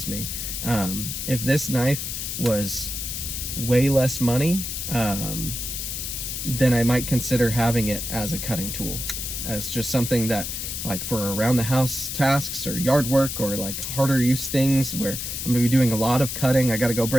me. If this knife was way less money, then I might consider having it as a cutting tool, as just something that, like, for around the house tasks or yard work or like harder use things where I'm gonna be doing a lot of cutting, I gotta go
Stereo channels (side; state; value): left; noise; hiss, 5 dB below the sound